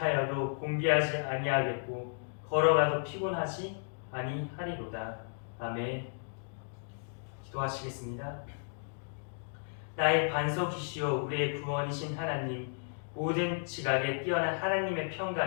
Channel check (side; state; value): right; silent; digital silence